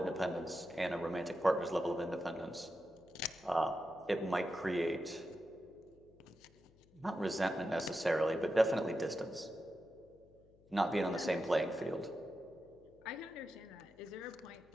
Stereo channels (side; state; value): left; noise; hum, 28 dB below the sound